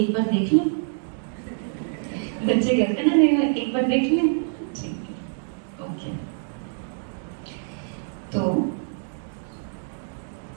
एक बार देख लें, बच्चे कहते ना नहीं, एक बार देख लें, ठीक है? ओके, तो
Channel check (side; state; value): left; silent; 61 dB below the other